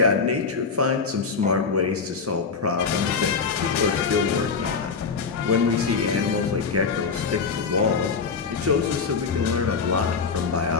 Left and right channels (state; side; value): quieter; right; 5.1 dB